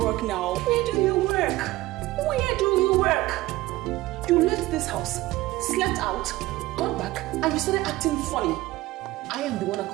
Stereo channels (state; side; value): quieter; left; 18.1 dB